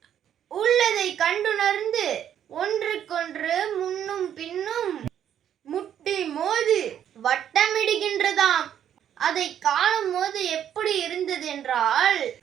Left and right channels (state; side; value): quieter; left; 9.8 dB